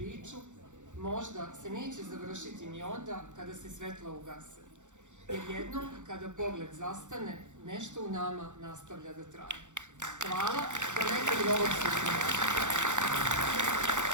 Možda se neće završiti ni onda kada se svetla ugase, jer jednom kada pogled zastane, nešto u nama nastavlja da traje. Hvala, do nekog novog susreta.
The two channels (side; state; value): left; late; 0.85 ms